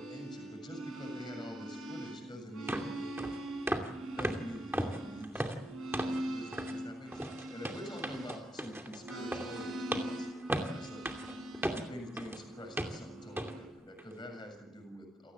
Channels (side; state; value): both; normal; correlation 0.81